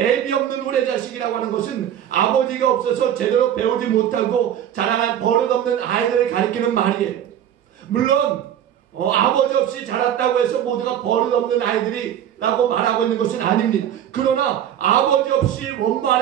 없는 후레자식이라고 하는 것은 아버지가 없어서 제대로 배우지 못하고 자라난 버릇없는 아이들을 가리키는 말이에요. 물론 아버지 없이 자랐다고 해서 모두가 버릇없는 아이들이라고 말하고 있는 것은 아닙니다. 그러나 아버지 없이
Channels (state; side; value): quieter; left; 10.3 dB